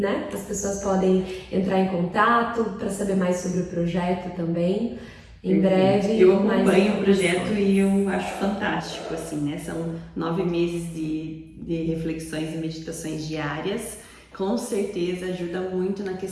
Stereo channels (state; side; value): identical; both; correlation 1.00